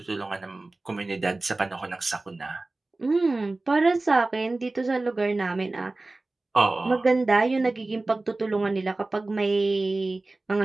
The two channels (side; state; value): left; quieter; 3.1 dB